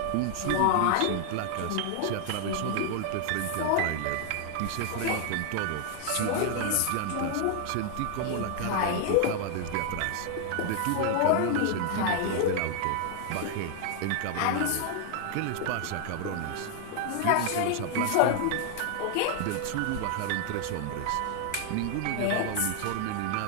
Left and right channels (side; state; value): both; different; correlation 0.00